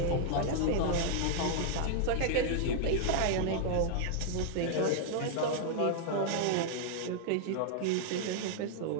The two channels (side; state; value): both; different; correlation -0.01